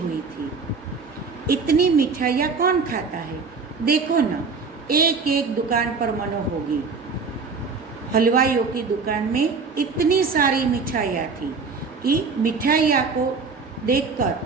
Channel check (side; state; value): left; quieter; 4.8 dB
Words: थी। इतनी मिठाइयाँ कौन खाता है? देखो ना, एक एक दुकान पर मनो होगी। हलवाइयों की दुकान में इतनी सारी मिठाइयाँ थी कि मिठाइयाँ को